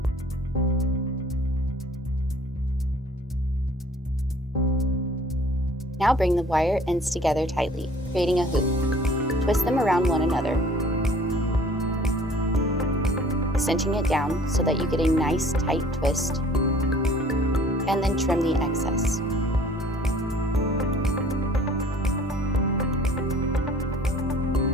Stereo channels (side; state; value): both; normal; correlation 0.53